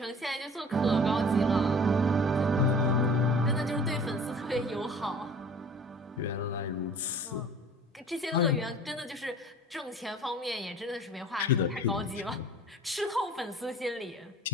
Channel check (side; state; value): both; normal; correlation 0.45